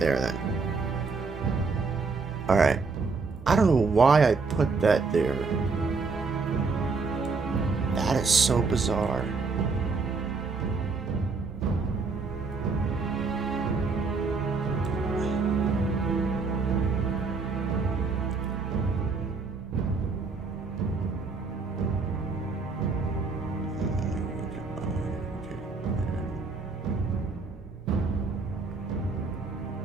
then. All right. I don't know why I put that there. That is so bizarre.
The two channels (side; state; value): left; quieter; 4.4 dB